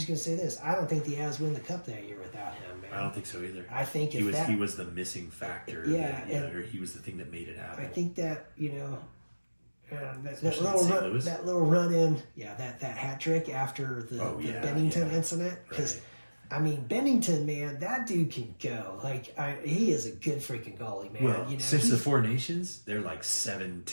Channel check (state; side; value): inverted; both; correlation -1.00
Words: going to say this, I don't think the Avs win the cup that year without him, man. I don't think so either. I think he was the missing factor, or he was the thing that made it happen. I think that, you know, that little run in, that hat trick after the Bennington incident, because I mean, Bennington, man, that dude can go. Like, he is a good freaking goalie, man. Well, you know, since the Four Nations, they're like